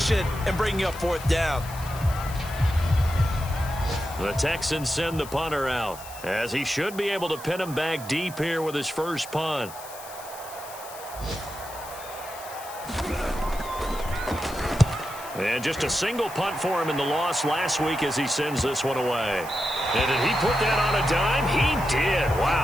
and bringing up 4th down. The Texans send the punter out, as he should be able to pin him back deep here with his first punt. And just a single punt for him in the loss last week as he sends this one away. And did he put that on a dime? He did.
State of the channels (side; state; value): left; noise; hiss, 15 dB below the sound